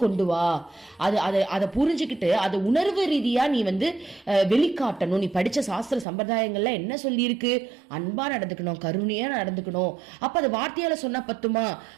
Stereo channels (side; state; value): left; drops out; at 6.1 s